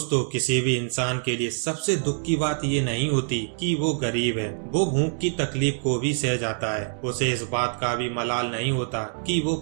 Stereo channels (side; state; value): left; silent; digital silence